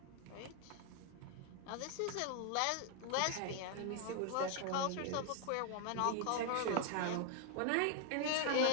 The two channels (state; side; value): different; both; correlation 0.00